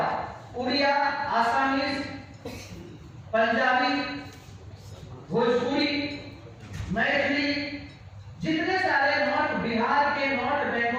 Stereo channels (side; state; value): both; identical; correlation 1.00